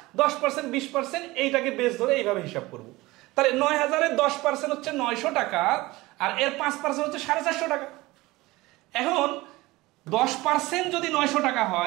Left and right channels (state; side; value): quieter; left; 20.2 dB